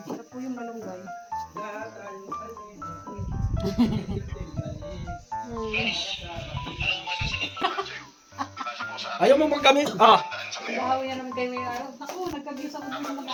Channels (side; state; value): both; identical; correlation 1.00